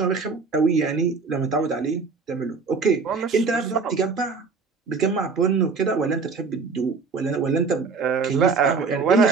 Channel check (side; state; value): left; quieter; 4.7 dB